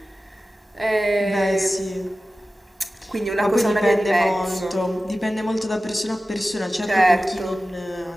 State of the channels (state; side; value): normal; both; correlation 0.95